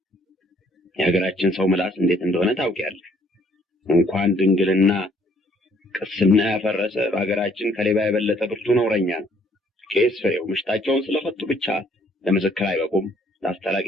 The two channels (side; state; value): both; normal; correlation 0.63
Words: የሀገራችን ሰው ምላስ እንዴት እንደሆነ ታውቂያለሽ። እንኳን ድንግልና ቅስና ያፈረሰ በሀገራችን ከሌባ የበለጠ ብርቱ ነውረኛ ነው። ቄስ ፍሬው ምሽታቸውን ስለፈቱ ብቻ ለምስክር አይበቁም፣